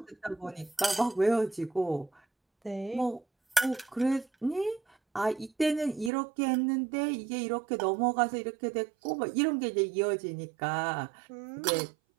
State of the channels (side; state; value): left; drops out; at 6.1 s